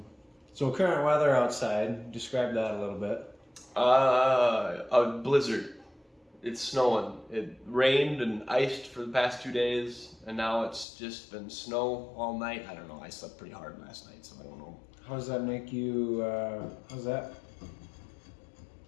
So current weather outside, describe that a little bit. A blizzard. It's snowing. It rained and iced for the past 2 days, and now it's just been snow all night. I don't know. I slept pretty hard last night, so I don't know. How does that make you? How's that?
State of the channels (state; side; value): drops out; right; at 10.9 s